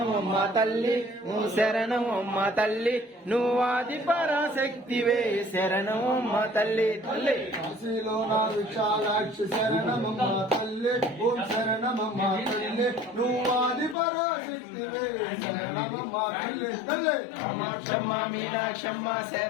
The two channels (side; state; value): right; drops out; at 14.0 s